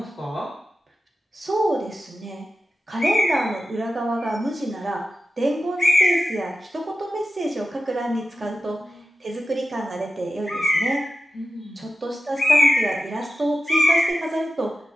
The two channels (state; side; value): normal; both; correlation 0.91